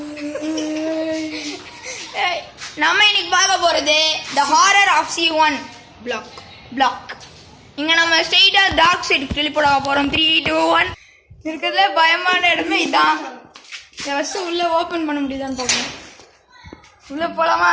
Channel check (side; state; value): both; identical; correlation 1.00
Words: நம்ம இன்னைக்கு பார்க்க போறது The Horror of C1 Block. இங்க நம்ம ஸ்ட்ரெயிட்டா டார்க் சைடு டெலிபோர்ட் ஆக போறோம். 3 2 1. இருக்கிறதுல பயமான இடமே இதான். ஃபர்ஸ்ட் உள்ள ஓபன் பண்ண முடியுதான்னு பார்ப்போம். உள்ள போலாமா